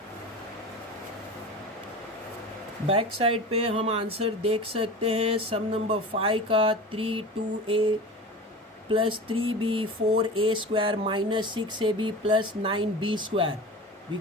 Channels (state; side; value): normal; both; correlation 0.33